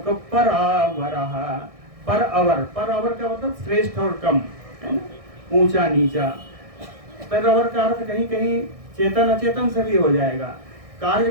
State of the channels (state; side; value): late; left; 1.6 ms